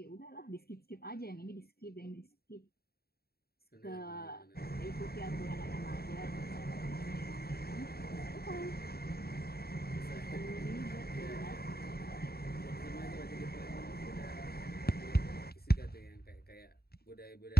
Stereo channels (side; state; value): right; late; 0.45 ms